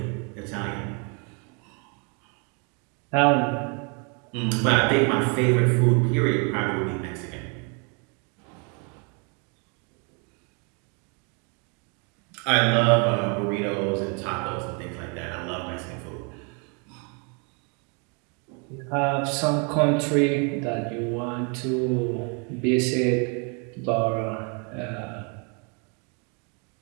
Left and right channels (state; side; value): quieter; left; 35.6 dB